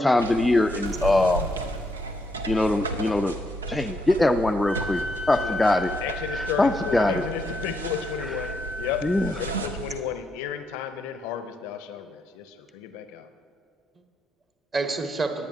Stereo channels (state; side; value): normal; both; correlation 0.78